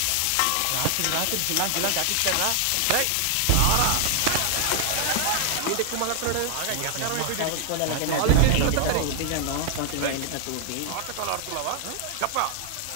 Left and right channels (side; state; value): both; different; correlation 0.00